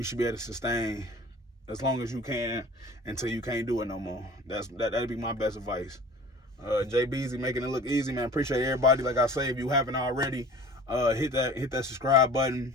should be able to sustain as long as you can until you can't do it no more. That'd be my best advice. Jay Beezy making it look easy, man. Appreciate everybody. Like I say, if you haven't already, hit that subscribe button.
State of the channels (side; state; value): both; normal; correlation 0.43